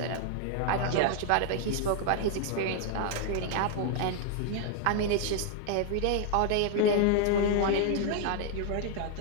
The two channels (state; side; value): different; both; correlation 0.00